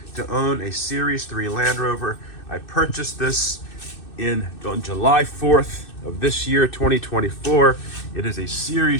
to own a Series 3 Land Rover. I purchased this on July 4th of this year, 2024. It is a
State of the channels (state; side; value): late; right; 2.6 ms